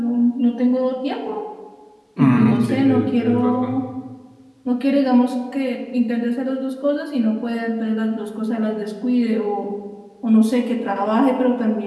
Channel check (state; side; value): identical; both; correlation 1.00